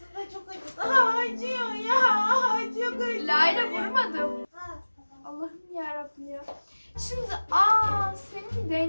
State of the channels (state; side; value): inverted; both; correlation -1.00